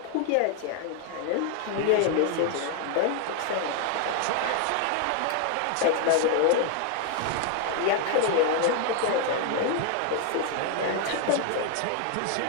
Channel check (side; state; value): both; different; correlation 0.00